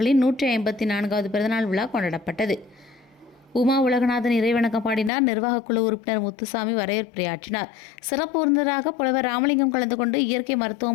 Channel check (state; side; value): drops out; right; at 5.1 s